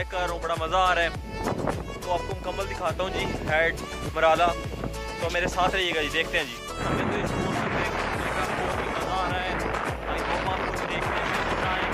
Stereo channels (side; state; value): both; identical; correlation 1.00